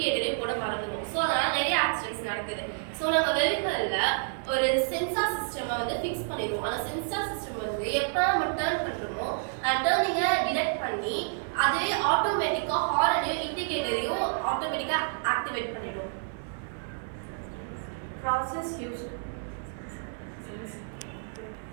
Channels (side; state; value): left; silent; 58 dB below the other